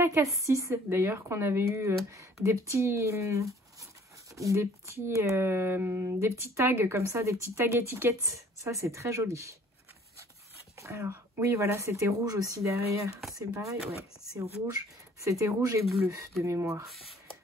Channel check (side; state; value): both; normal; correlation 0.55